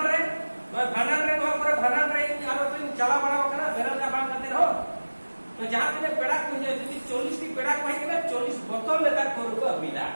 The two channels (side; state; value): both; inverted; correlation -1.00